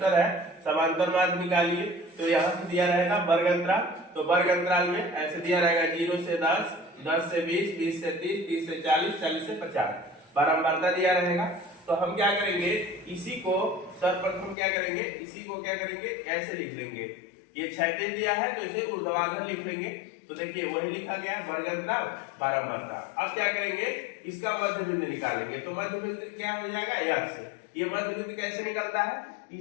है, समांतर मार्ग निकालिए। तो यहाँ से दिया रहेगा वर्ग अंतराल, तो वर्ग अंतराल में ऐसे दिया रहेगा 0 से 10, 10 से 20, 20 से 30, 30 से 40, 40 से 50, बारंबारता दिया रहेगा। तो हम क्या करेंगे, इसी को सर्वप्रथम क्या करेंगे, इसी को क्या करेंगे, ऐसे लिख लेंगे। ये क्षैतिज दिया है तो इसे ऊर्ध्वाधर लिख लेंगे। तो देखिए वही लिखा गया वर्ग अंतराल बारंबारता। अब क्या करेंगे, इसका मध्य बिंदु निकालेंगे। तो मध्य बिंदु क्या हो जाएगा, x। ये मध्य बिंदु कैसे निकलता है,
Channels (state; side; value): drops out; right; at 14.6 s